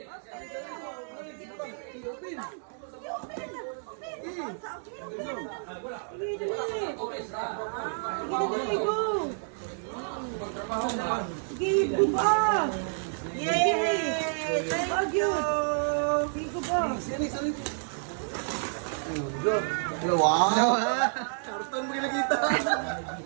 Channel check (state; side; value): silent; left; 58 dB below the other